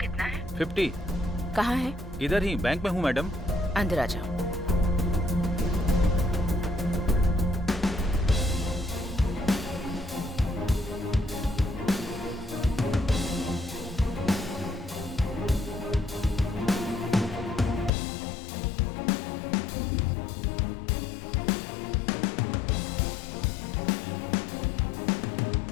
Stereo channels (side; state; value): right; drops out; at 17.9 s